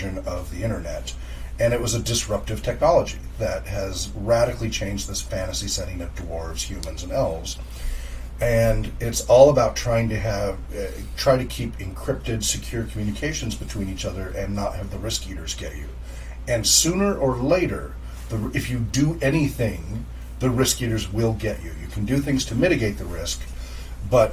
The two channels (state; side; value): identical; both; correlation 1.00